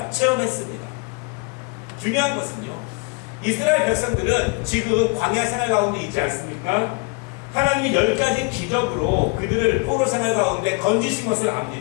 체험했습니다. 중요한 것은요, 이스라엘 백성들은 지금 광야 생활 가운데 있지 않습니까? 하나님이 10가지 기적으로 그들을 포로 생활 가운데 건지신 것을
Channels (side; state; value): right; quieter; 31.4 dB